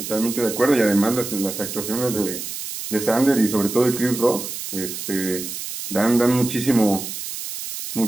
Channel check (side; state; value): right; noise; hiss, 7 dB below the sound